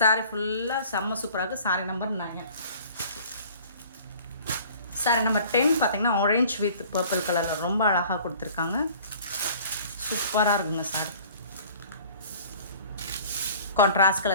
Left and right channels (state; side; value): inverted; both; correlation -0.49